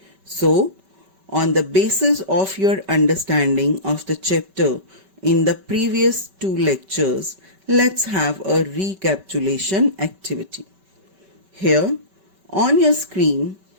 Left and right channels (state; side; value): late; left; 5.2 ms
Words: So, on the basis of your understanding of the chapter in the previous two lectures, let's have a recapitulation activity. Here, on your screen,